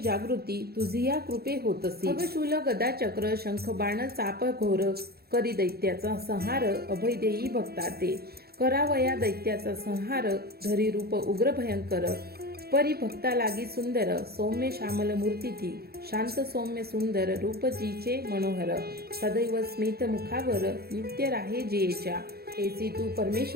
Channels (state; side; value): late; left; 0.46 ms